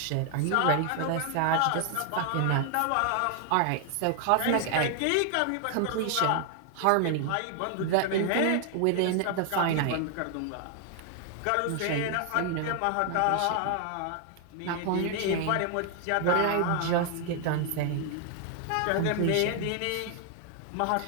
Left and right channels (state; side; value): different; both; correlation 0.00